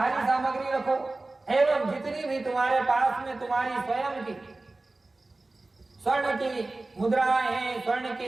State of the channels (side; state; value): left; quieter; 3.1 dB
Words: सामग्री रखो एवं जितनी भी तुम्हारे पास में तुम्हारी स्वयं की स्वर्ण की मुद्राएं हैं, स्वर्ण